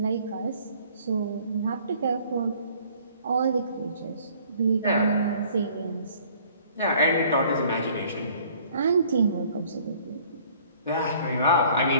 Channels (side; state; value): both; inverted; correlation -0.56